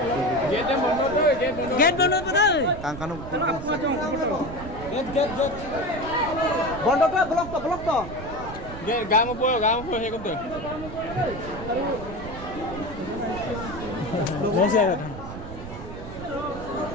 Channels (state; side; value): noise; right; rumble, 11 dB below the sound